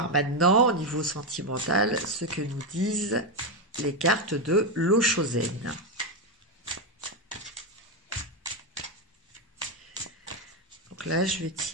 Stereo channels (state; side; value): normal; both; correlation 0.08